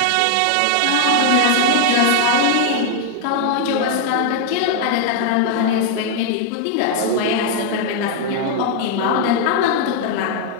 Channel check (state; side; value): different; both; correlation 0.00